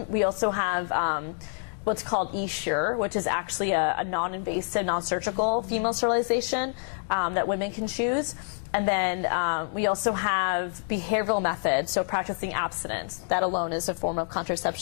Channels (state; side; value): silent; right; digital silence